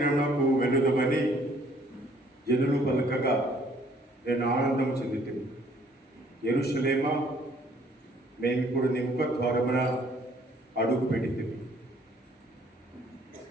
వెళ్ళుదామని జనులు పలకగా నేను ఆనందం చెందుతుంది. యెరూషలేమా, మేము ఇప్పుడు నీ ముఖ ద్వారమున అడుగు పెడితిమి.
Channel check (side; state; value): both; normal; correlation 0.61